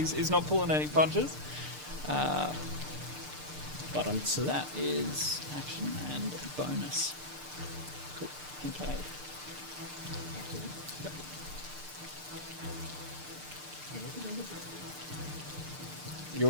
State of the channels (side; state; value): left; late; 6.7 ms